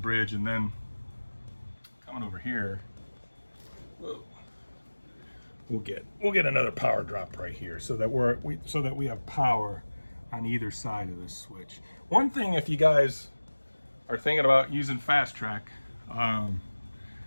and then coming over here, whoa, we'll get another power drop right here, so that we have power on either side of this switch. One thing, if you guys are thinking about using Fastrack,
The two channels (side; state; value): both; inverted; correlation -1.00